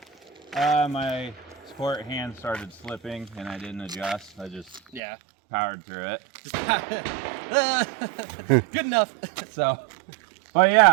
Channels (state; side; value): drops out; left; at 5.0 s